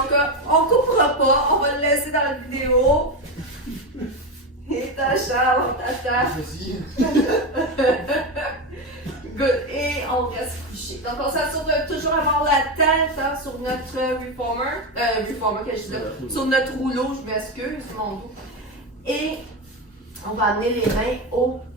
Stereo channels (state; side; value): normal; both; correlation 0.14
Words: on ne coupera pas, on va le laisser dans la vidéo. Et t'as Charles, on t'attend. Good. Et on reste couché. Donc on s'assure de toujours avoir la tête sur notre reformer, que je dis là, sur notre rouleau, je m'excuse, mon dos. Et on va amener les mains au